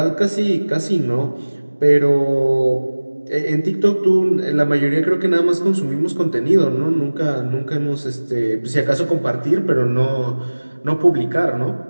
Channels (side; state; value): both; inverted; correlation -1.00